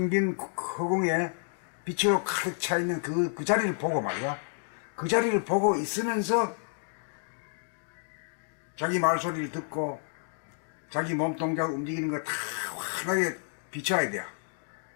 빈 허공에 빛이 가득 차 있는 그 자리를 보고 말이야. 그 자리를 보고 있으면서 자기 말소리를 듣고 자기 몸동작 움직이는 거 다 환하게 비춰야 돼요.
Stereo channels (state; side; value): silent; right; 58 dB below the other